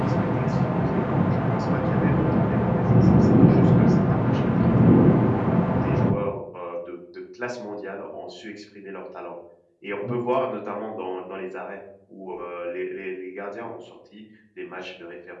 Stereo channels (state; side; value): identical; both; correlation 1.00